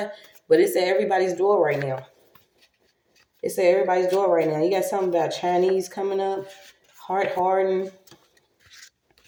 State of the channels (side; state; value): both; identical; correlation 1.00